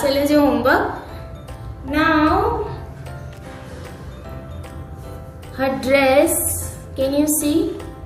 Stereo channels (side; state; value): both; identical; correlation 1.00